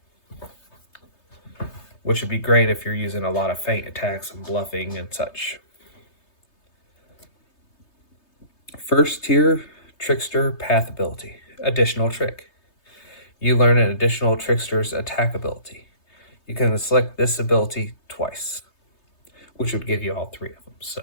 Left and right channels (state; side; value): late; right; 3.3 ms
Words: which would be great if you're using a lot of feint attacks and bluffing and such. First tier Trickster Path ability. Additional Trick. You learn an additional Trickster's attack ability. You can select this ability twice, which would give you all three of them. So,